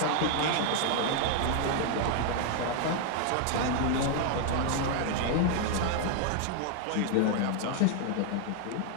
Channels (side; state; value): both; different; correlation 0.01